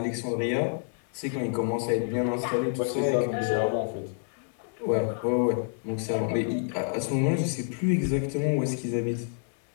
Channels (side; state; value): right; silent; 59 dB below the other